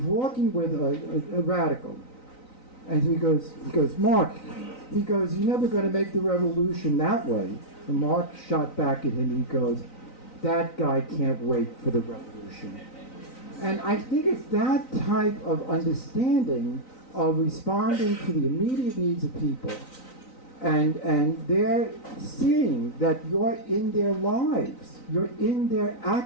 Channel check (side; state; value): right; late; 3.9 ms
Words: walking with a radical, and he goes, Marc, he goes, you're never going to make the revolution that way. And Marc shot back at him, he goes, that guy can't wait for the revolution. And I think it's that type of understanding of responding to the immediate needs of people, and they're seeing that you're in their lives, you're in their